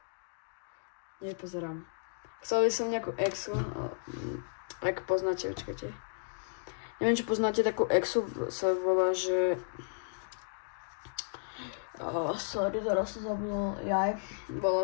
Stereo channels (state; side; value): silent; right; digital silence